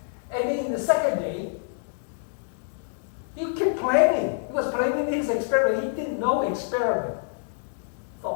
And then in the second day, he kept planning. He was planning his experiment. He did no experiment.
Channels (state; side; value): silent; right; 60 dB below the other